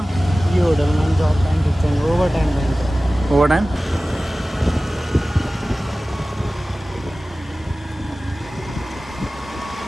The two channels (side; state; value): both; normal; correlation 0.97